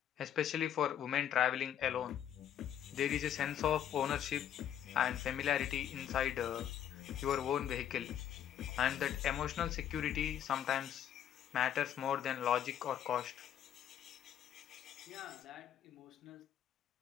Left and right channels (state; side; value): quieter; right; 10.1 dB